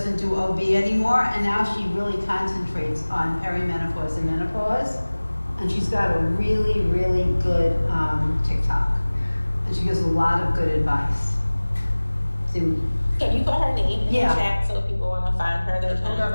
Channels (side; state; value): both; inverted; correlation -1.00